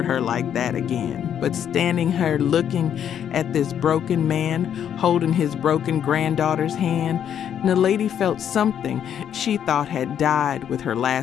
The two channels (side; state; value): right; quieter; 9.2 dB